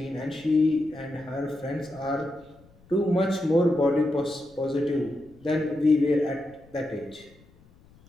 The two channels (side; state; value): left; noise; rumble, 27 dB below the sound